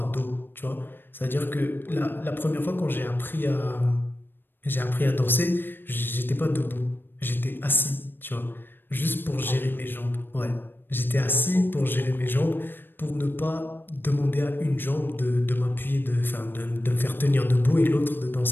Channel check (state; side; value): late; right; 0.097 ms